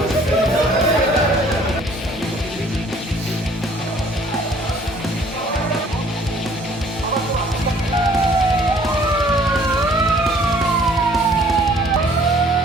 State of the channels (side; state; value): both; normal; correlation 0.57